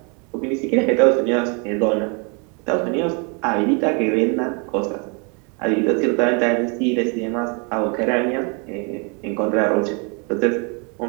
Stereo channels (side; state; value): left; quieter; 34.6 dB